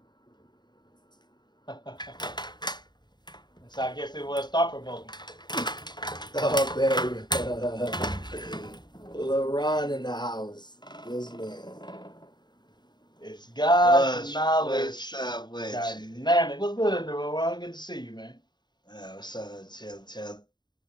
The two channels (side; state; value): right; late; 0.21 ms